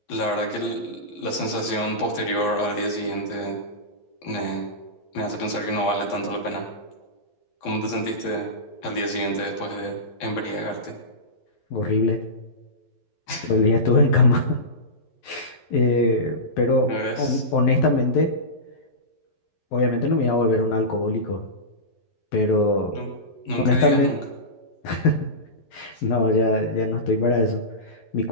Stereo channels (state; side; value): late; right; 11 ms